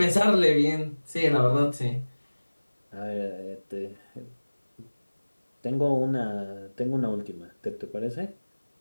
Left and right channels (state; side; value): inverted; both; correlation -1.00